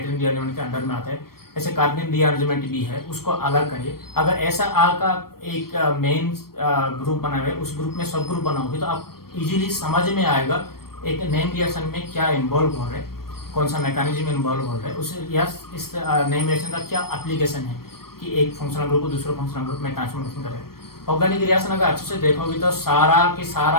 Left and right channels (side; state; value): right; late; 0.94 ms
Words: रीअरेंजमेंट के अंडर में आता है। ऐसे कार्बन रीअरेंजमेंट भी है, उसको अलग करिए। अगर ऐसा आपका एक मेन ग्रुप बना हुआ है, उस ग्रुप में सब ग्रुप बनाओगे तो आप इजीली समझ में आएगा एक नेम रिएक्शन में क्या इन्वॉल्व हो रहा है, कौन सा मैकेनिज्म इन्वॉल्व हो रहा है, उस इस नेम रिएक्शन का क्या एप्लीकेशन है कि एक फंक्शनल ग्रुप को दूसरे फंक्शनल ग्रुप में ट्रांसफॉर्मेशन करें। ऑर्गेनिक रिएक्शन अगर अच्छे से देखोगे तो